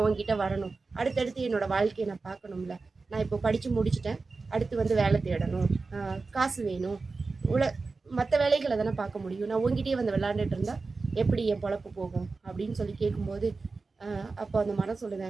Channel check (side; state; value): left; quieter; 4.0 dB